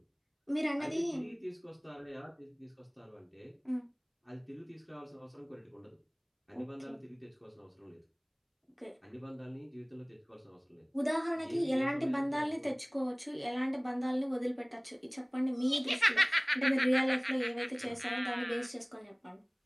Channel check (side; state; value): both; identical; correlation 1.00